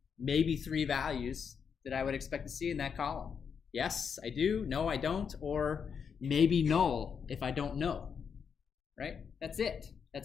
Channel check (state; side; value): quieter; right; 6.7 dB